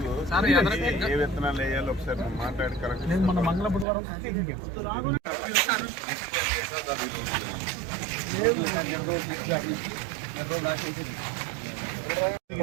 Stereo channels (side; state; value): left; drops out; at 3.9 s